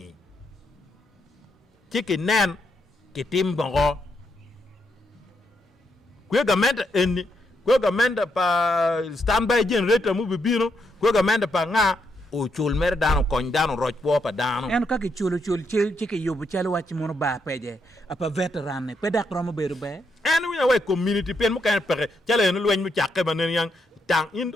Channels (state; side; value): normal; both; correlation 0.79